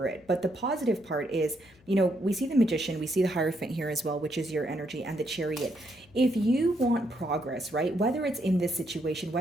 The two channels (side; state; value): left; noise; hum, 29 dB below the sound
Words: it. But the positive part is, we see the Magician, we see the Hierophant here as well, which is your energy, and the Chariot. If you want progress, right, whether it's in this situation,